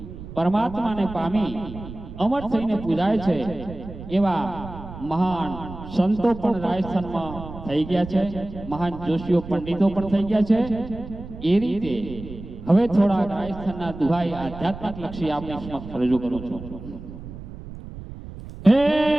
પરમાત્માને પામી અમર થઈને પૂજાય છે, એવા મહાન સંતો પણ રાજસ્થાનમાં થઈ ગયા છે, મહાન જોશીઓ પંડિતો પણ થઈ ગયા છે. એ રીતે હવે થોડા રાજસ્થાનના દુહાઈ આધ્યાત્મિક લક્ષી આપની સમક્ષ રજૂ કરું છું. હે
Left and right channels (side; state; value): right; noise; rumble, 13 dB below the sound